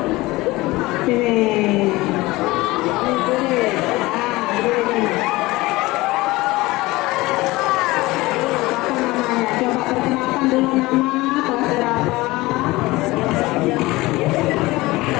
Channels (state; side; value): quieter; right; 20.3 dB